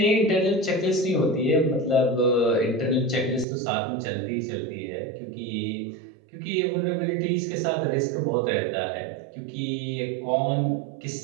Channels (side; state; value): left; drops out; at 3.5 s